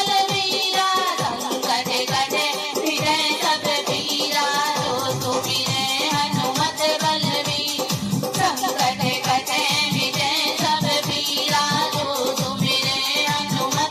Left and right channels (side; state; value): both; identical; correlation 1.00